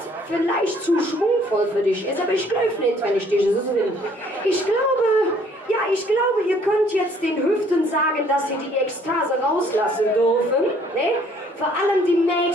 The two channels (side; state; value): both; normal; correlation 0.60